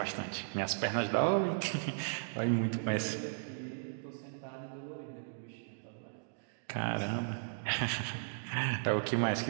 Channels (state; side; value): silent; left; digital silence